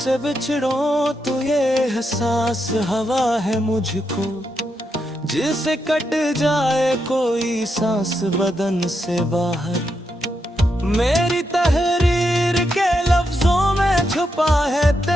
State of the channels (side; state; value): both; normal; correlation 0.83